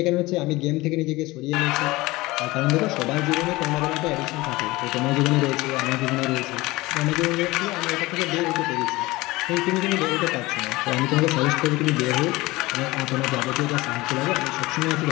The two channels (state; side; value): quieter; right; 20.5 dB